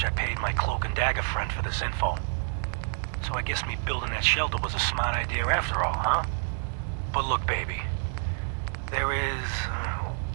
I paid my cloak and dagger friend for this info. So I guess me building that shelter was a smart idea after all, huh? But look, baby. There is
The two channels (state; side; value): silent; left; 59 dB below the other